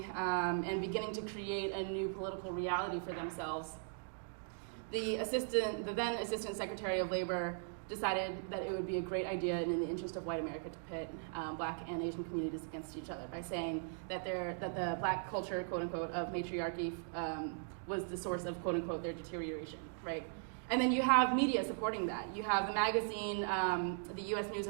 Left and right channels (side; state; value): left; silent; digital silence